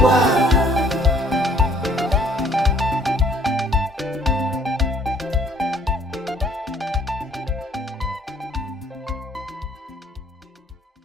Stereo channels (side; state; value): both; normal; correlation 0.59